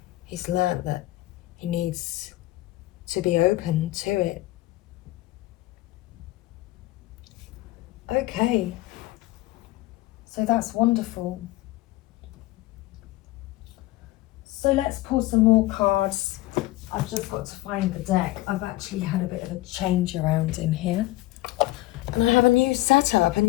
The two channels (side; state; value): right; quieter; 17.9 dB